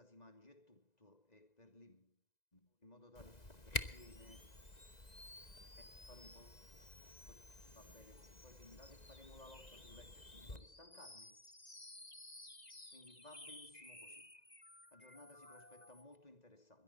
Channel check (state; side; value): late; right; 2.0 ms